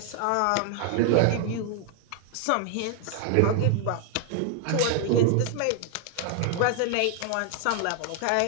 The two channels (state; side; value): different; both; correlation 0.00